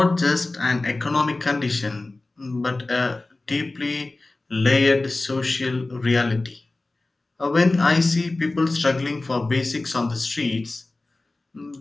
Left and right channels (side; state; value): right; quieter; 3.1 dB